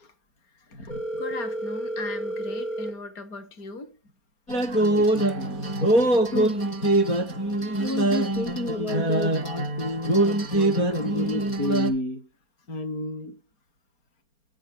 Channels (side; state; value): right; late; 4.3 ms